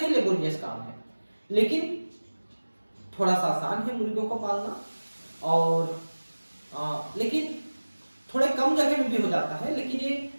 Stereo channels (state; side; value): inverted; both; correlation -1.00